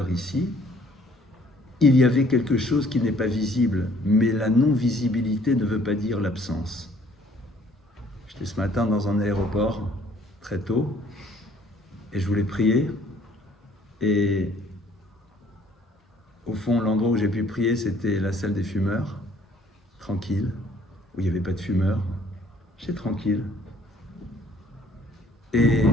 ici. Il y avait quelque chose qui n'est pas visible, mais la non-visibilité ne veut pas dire l'absence. J'étais ce matin dans un aéroport, très tôt, et je voulais prier, et au fond, l'endroit où j'ai pu prier, c'était la salle des fumeurs, tranquille, où il n'y avait pas de fumeurs. J'étais tranquille. Et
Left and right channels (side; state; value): both; normal; correlation 0.59